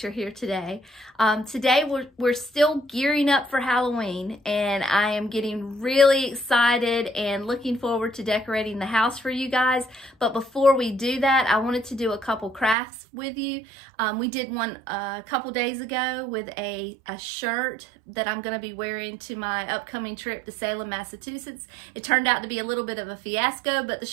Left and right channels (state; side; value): drops out; left; at 12.8 s